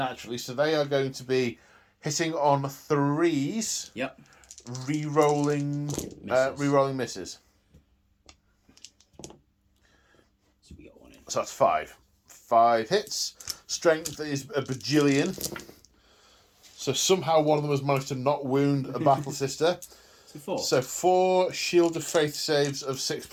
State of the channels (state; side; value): identical; both; correlation 1.00